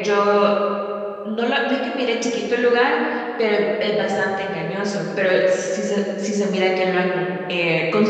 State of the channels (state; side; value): identical; both; correlation 1.00